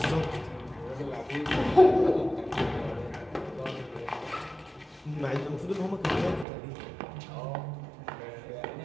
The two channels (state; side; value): drops out; left; at 6.5 s